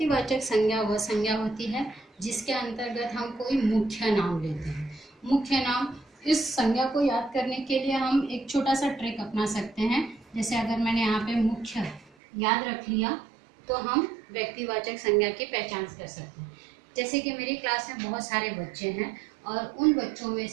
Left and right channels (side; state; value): left; drops out; at 12.1 s